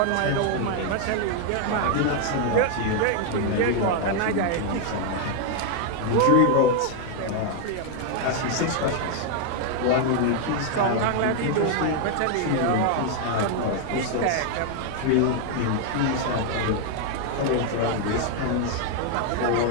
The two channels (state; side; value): different; both; correlation 0.00